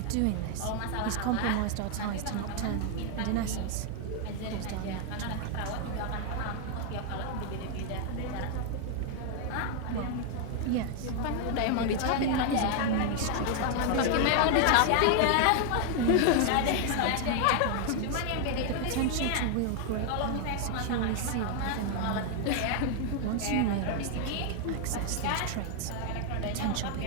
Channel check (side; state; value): both; different; correlation 0.00